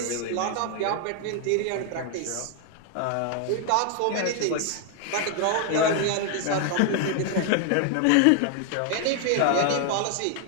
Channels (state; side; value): different; both; correlation 0.00